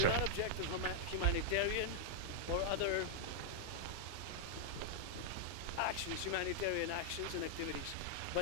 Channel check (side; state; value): both; different; correlation -0.01